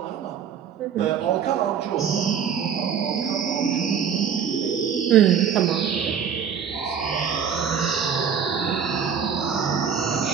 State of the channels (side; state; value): left; quieter; 7.6 dB